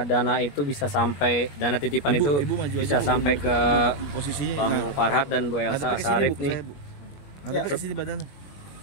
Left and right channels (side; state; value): right; late; 21 ms